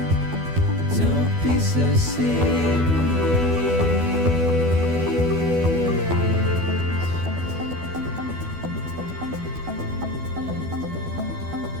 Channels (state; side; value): late; left; 12 ms